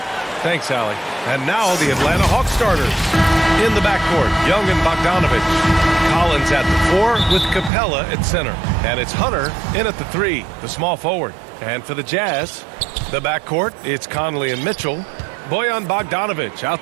Thanks, Allie. And now the Atlanta Hawks starters. In the backcourt, Young and Bogdanovich. Collins at the 4 with Capella at center. And it's Hunter in at the 3, the small forward. And for the Jazz, the backcourt, it's Conley and Mitchell. Bojan Bogdanovich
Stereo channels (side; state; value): left; drops out; at 7.7 s